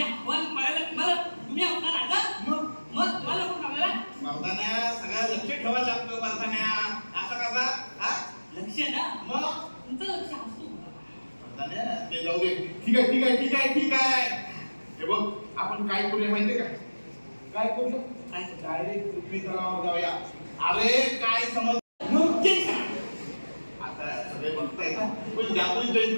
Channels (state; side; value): inverted; both; correlation -1.00